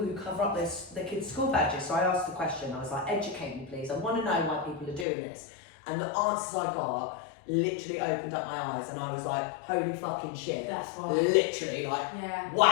cover up their kids' school badges. So I asked the question, I was like, educate me please. I want to know why people are doing this. And the answers I got literally opened up my eyes, and I was like, holy fucking shit. That's why. Literally, like, Yeah.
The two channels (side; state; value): right; drops out; at 5.1 s